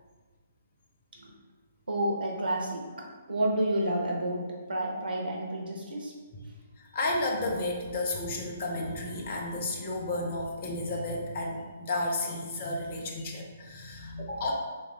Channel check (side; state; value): both; inverted; correlation -0.67